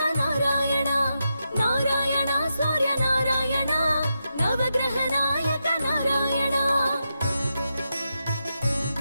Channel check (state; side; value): inverted; both; correlation -0.86